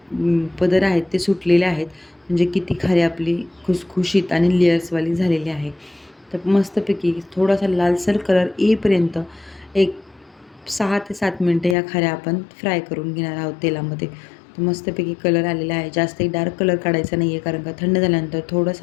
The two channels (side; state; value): right; drops out; at 11.8 s